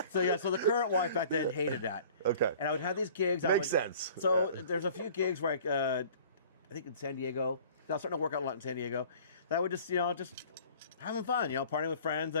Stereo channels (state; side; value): inverted; both; correlation -0.48